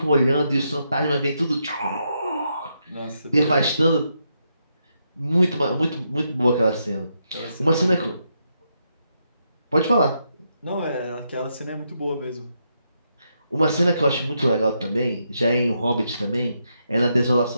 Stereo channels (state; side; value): inverted; both; correlation -0.81